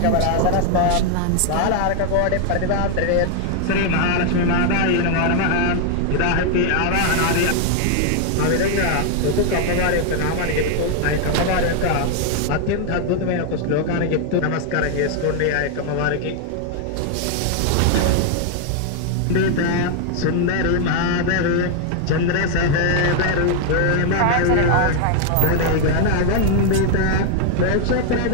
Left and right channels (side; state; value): both; different; correlation 0.00